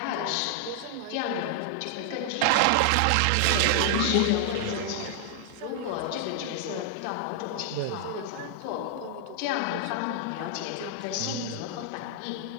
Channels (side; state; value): both; different; correlation 0.00